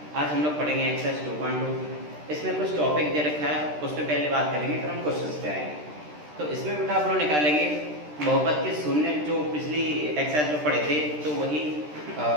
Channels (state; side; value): late; left; 13 ms